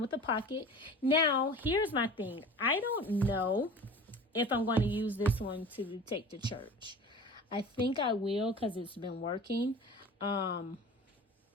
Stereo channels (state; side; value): normal; both; correlation 0.39